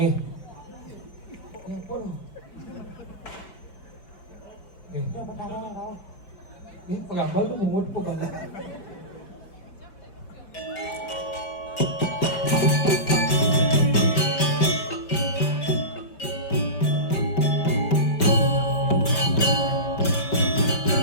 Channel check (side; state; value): right; late; 5.4 ms